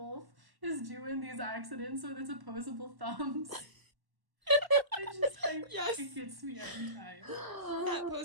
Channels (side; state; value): left; late; 1.1 ms